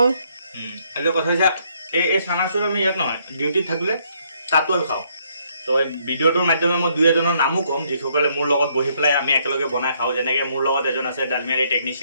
এইটো কথা হৈছে এই চানাচুৰ আমি ইয়াত নহয় ডিউটিত থাকিলে তাতো আমি খাওঁ তো এই ভিডিঅ'টোৰ মাধ্যমে মই দুই এজনৰ নামো ক'ম যিসকলে মোৰ লগত বহি পেলাই আমি একেলগে বনাই খাওঁ যেনেকৈ মোৰ লগত এজন আছে ডালমিয়াৰী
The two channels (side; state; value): both; inverted; correlation -0.70